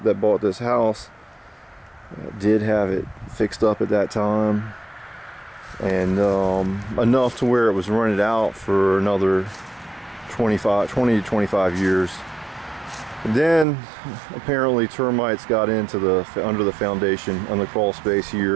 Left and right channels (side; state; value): left; drops out; at 13.7 s